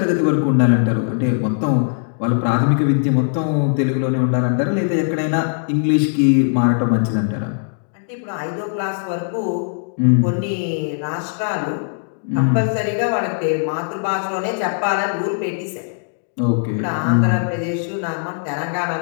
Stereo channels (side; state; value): right; silent; digital silence